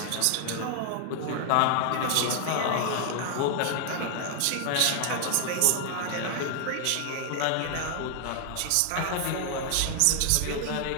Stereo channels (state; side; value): different; both; correlation 0.00